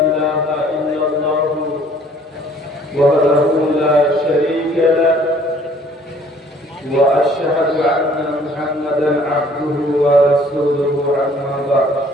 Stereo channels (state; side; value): normal; both; correlation 0.57